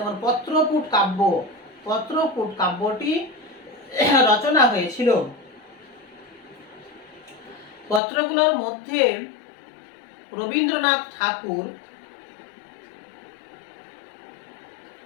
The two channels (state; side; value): drops out; right; at 8.0 s